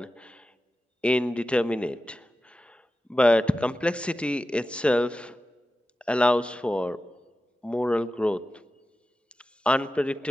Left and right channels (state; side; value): normal; both; correlation 0.93